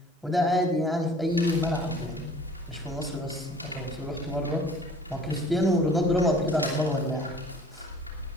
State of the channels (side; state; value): both; normal; correlation 0.51